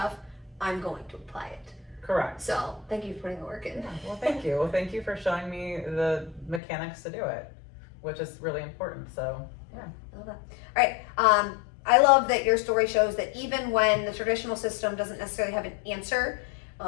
I'm going to apply it. Correct. So thank you for putting the work in. Yeah, well, thank you. Well, thank you for showing me the mechanics to do it, which is really important. So, yeah. I love that. All right. I love that your story shows that even when the traditional system doesn't necessarily have an answer,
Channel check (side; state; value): right; drops out; at 6.6 s